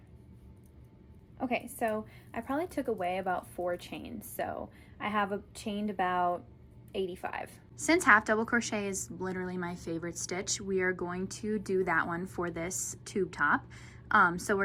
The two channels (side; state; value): both; identical; correlation 1.00